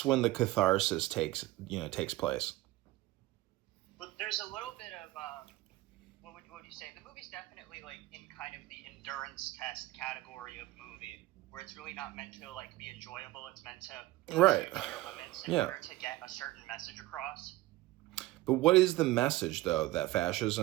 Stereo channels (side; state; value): left; quieter; 17.5 dB